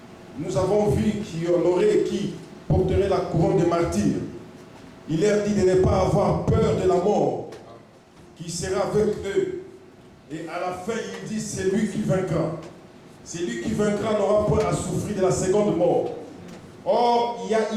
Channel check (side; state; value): both; identical; correlation 1.00